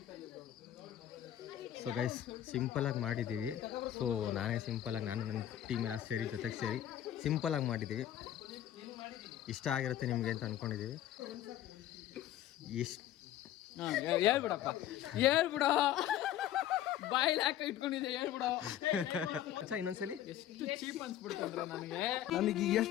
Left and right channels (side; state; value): right; quieter; 11.8 dB